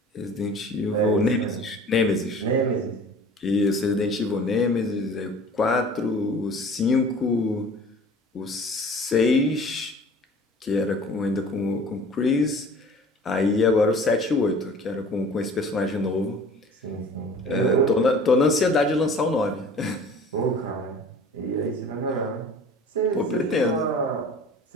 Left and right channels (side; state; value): both; normal; correlation 0.45